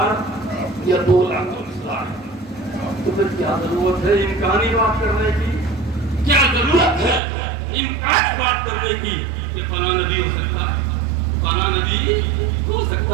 یا 2,24,000۔ تو پھر کیا ضرورت ہے امکانی بات کرنے کی، کیا ضرورت ہے امکانی بات کرنے کی کہ فلاں نبی ہو سکتا ہے، فلاں نبی ہو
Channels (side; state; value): left; drops out; at 7.2 s